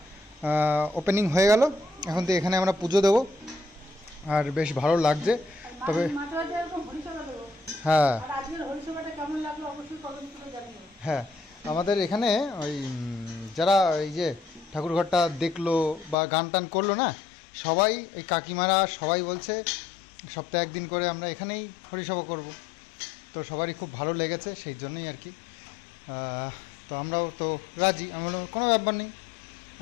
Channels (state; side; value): drops out; right; at 16.2 s